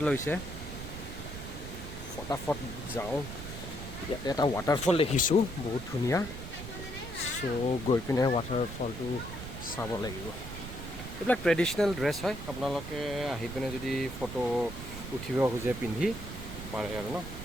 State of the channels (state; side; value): noise; right; rumble, 9 dB below the sound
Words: লৈছে ফটাফট যাওঁ ইয়াতে এটা ৱাটাৰফল দেখিছোঁ বহুত ধুনীয়া চ' গৈ পিনে ৱাটাৰফলটো চাব লাগিব এইবিলাক ট্ৰেডিশ্যনেল ড্ৰেছ হয় আপোনালোকে আহি পিনে যদি ফটো উঠিব খোজে পিন্ধি পাৰে আৰু ন